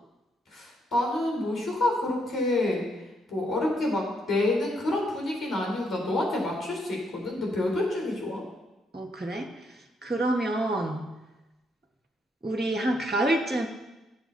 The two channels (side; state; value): both; normal; correlation 0.75